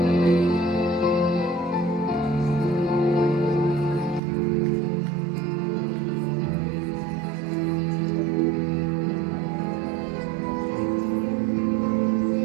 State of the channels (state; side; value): drops out; left; at 4.2 s